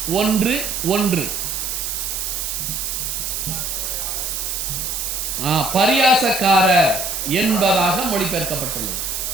1:1 பரியாசக்காரர் என்பதாக மொழிபெயர்க்கப்பட்டுள்ளது.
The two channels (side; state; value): right; noise; hiss, 3 dB below the sound